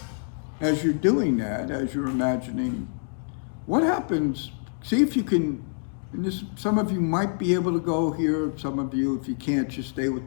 as you're doing that, as you're imagining, what happens, see if you can, and this, some of you might be able to go here, some of you, if you can't, just stay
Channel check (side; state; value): right; silent; digital silence